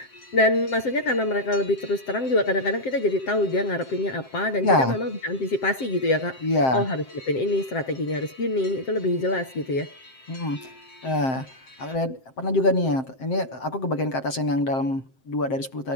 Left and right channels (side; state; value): right; late; 7.7 ms